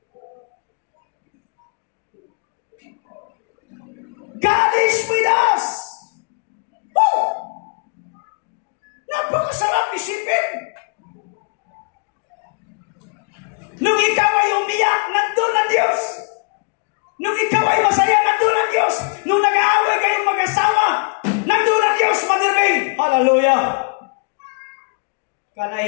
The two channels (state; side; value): quieter; right; 39.2 dB